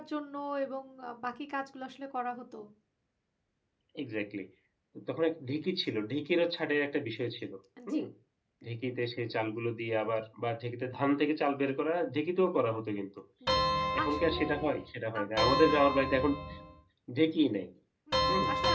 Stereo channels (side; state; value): both; identical; correlation 1.00